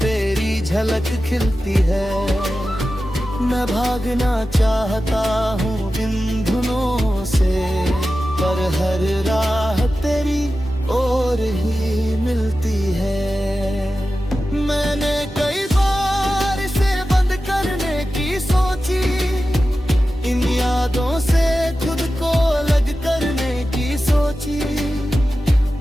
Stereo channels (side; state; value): both; normal; correlation 0.93